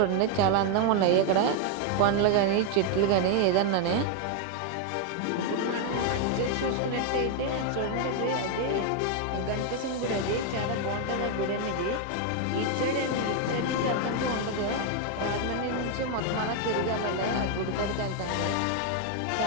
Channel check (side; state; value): both; different; correlation 0.01